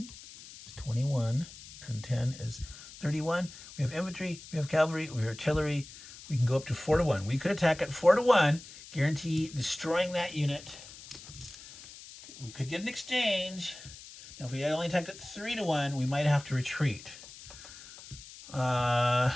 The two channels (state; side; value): noise; left; hiss, 17 dB below the sound